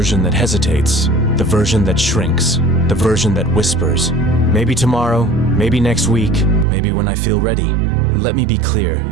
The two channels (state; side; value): drops out; left; at 6.7 s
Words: that hesitates, the version that shrinks, the version that whispers. Maybe tomorrow, maybe next week, maybe when I feel ready. Let me be clear,